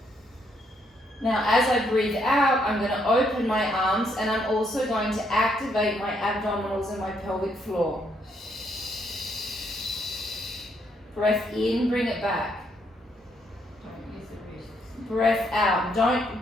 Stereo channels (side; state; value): both; normal; correlation 0.73